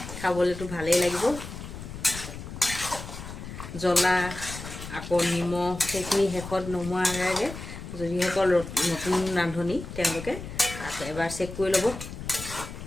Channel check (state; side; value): noise; left; rumble, 10 dB below the sound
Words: খাবলৈতো ভালেই লাগিব। জ্বলা আকৌ নিমখ সেইখিনি শেষত নমোৱাৰ আগে যিসকল নতুন ৰান্ধনি তেওঁলোকে এবাৰ চেক কৰি ল'ব,